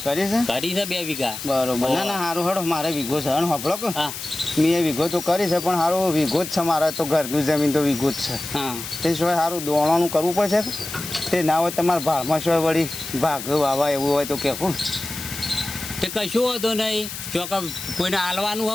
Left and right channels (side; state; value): left; noise; hiss, 9 dB below the sound